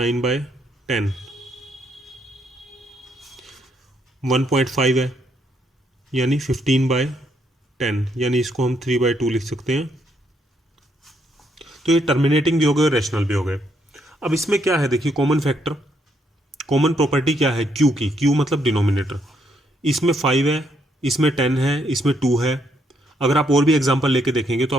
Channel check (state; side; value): normal; both; correlation 0.74